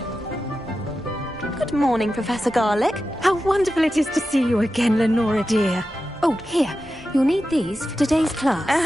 Good morning, Professor Garlick. How wonderful it is to see you again, Lenora dear. Oh, here. You'll need these for today's class.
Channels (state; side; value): normal; both; correlation 0.92